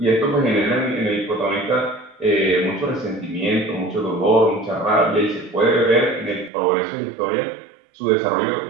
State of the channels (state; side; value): drops out; left; at 6.5 s